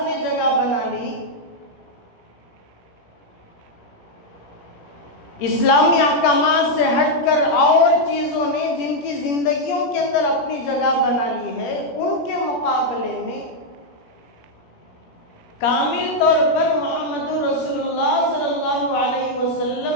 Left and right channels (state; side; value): late; right; 17 ms